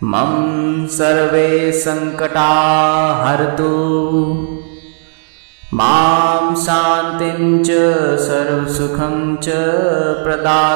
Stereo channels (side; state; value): left; silent; 57 dB below the other